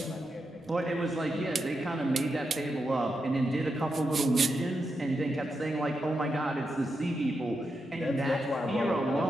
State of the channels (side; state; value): both; normal; correlation 0.86